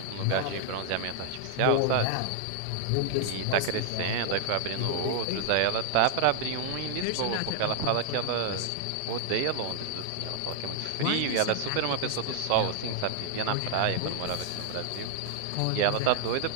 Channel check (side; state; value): both; different; correlation 0.00